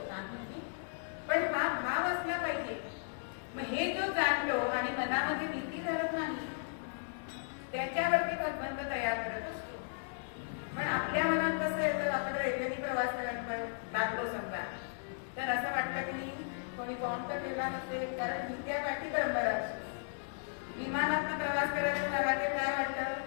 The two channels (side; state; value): right; silent; 54 dB below the other